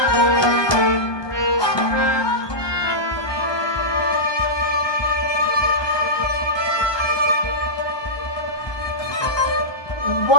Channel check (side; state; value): right; late; 1.2 ms